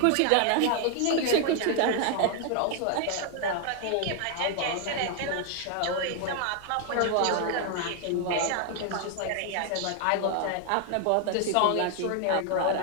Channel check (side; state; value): both; different; correlation 0.00